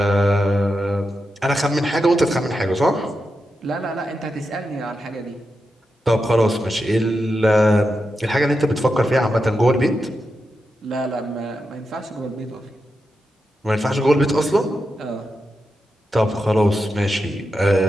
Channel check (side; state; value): both; normal; correlation 0.88